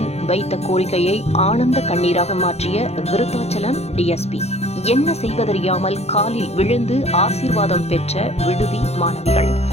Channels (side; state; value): right; late; 0.31 ms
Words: வைத்த கோரிக்கையை ஆனந்த கண்ணீராக மாற்றிய விருத்தாச்சலம் டிஎஸ்பி. என்ன செய்வதறியாமல் காலில் விழுந்து ஆசீர்வாதம் பெற்ற விடுதி மாணவிகள்.